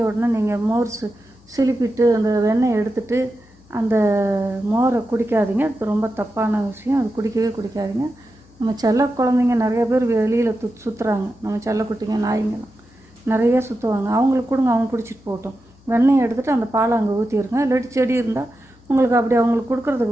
உடனே நீங்கள் மோர் சிலிப்பிட்டு அந்த வெண்ணெய் எடுத்துகிட்டு அந்த மோரை குடிக்காதீங்க. அது ரொம்ப தப்பான விஷயம். அது குடிக்காதீங்க. நம்ம செல்ல குழந்தைங்க நிறைய பேர் வெளியில் சுற்றுறாங்க. நம்ம செல்லக்குட்டிங்க நாய்ங்கெல்லாம் நிறைய சுற்றுவாங்க. அவங்களுக்கு கொடுங்க, அவங்க குடிச்சிட்டு போகட்டும். வெண்ணெய் எடுத்துகிட்டு அந்த பாலை அங்கே ஊற்றிடுங்க. இல்லாட்டி செடி இருந்தால் உங்களுக்கு அப்படி அவங்களுக்கு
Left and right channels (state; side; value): noise; left; hum, 28 dB below the sound